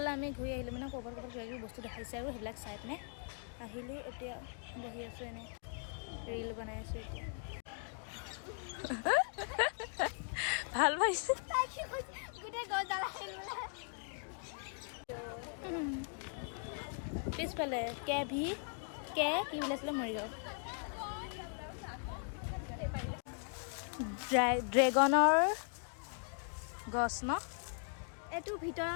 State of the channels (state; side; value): silent; right; 52 dB below the other